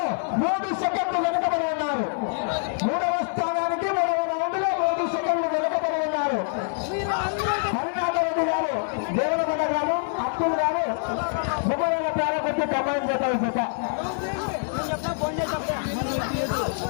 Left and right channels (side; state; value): right; silent; digital silence